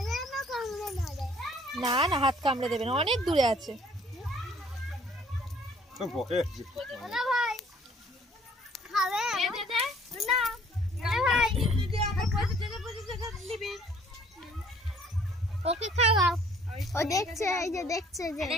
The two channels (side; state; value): both; normal; correlation 0.58